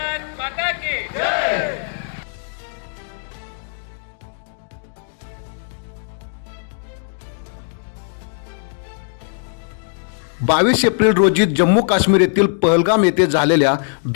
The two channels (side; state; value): right; silent; digital silence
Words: माता की जय. 22 एप्रिल रोजी जम्मू काश्मीर येथील पहलगाम येथे झालेल्या